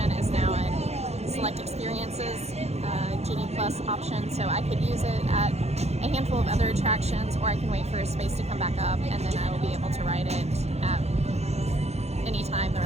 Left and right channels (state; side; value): late; left; 0.31 ms